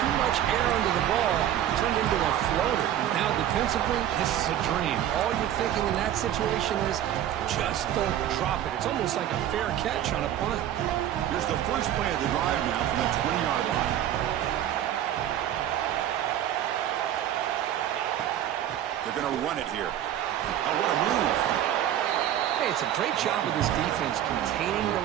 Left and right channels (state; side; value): quieter; left; 11.3 dB